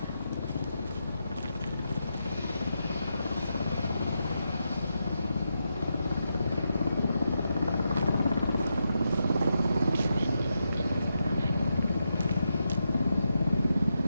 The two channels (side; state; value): both; inverted; correlation -0.85